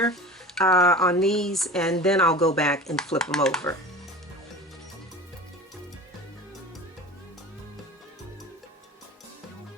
on these, and then I'll go back and flip them over.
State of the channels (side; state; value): both; normal; correlation 0.35